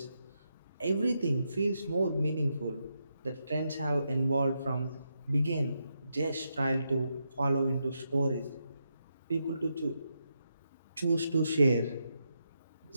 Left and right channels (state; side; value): inverted; both; correlation -0.83